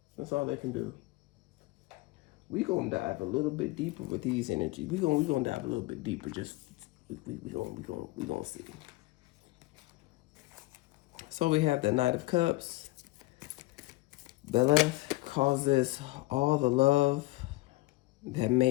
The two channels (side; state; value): right; quieter; 20.7 dB